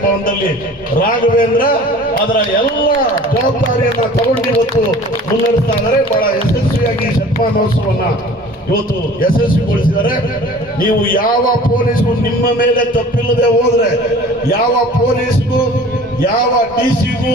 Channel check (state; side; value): normal; both; correlation 0.45